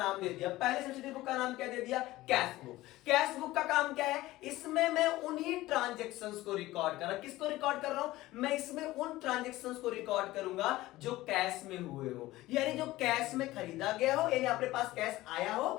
दे दिया। पहले सब्सिडरी बुक का नाम क्या दे दिया, कैश बुक। कैश बुक का काम क्या है, इसमें मैं उन्हीं ट्रांजैक्शंस को रिकॉर्ड कर रहा हूं। किसको रिकॉर्ड कर रहा हूं, मैं इसमें उन ट्रांजैक्शंस को रिकॉर्ड करूंगा जो कैश में हुए हो, यानी जो कैश में खरीदा गया हो, यानी अपने पास कैश आया हो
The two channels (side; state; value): right; quieter; 17.5 dB